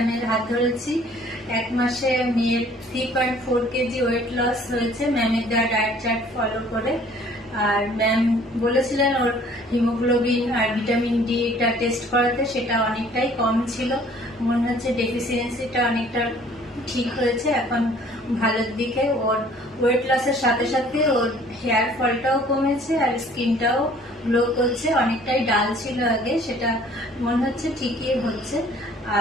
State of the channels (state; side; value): normal; both; correlation 0.55